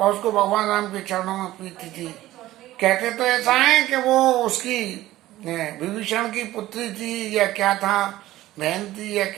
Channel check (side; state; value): left; quieter; 15.7 dB